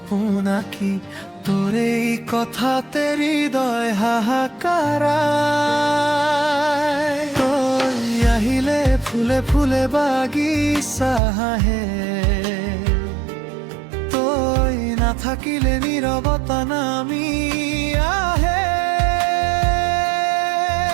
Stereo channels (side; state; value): left; drops out; at 11.2 s